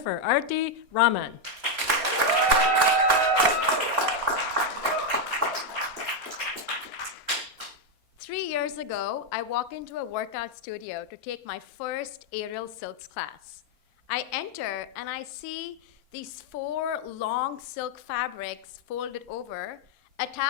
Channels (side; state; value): left; late; 4.3 ms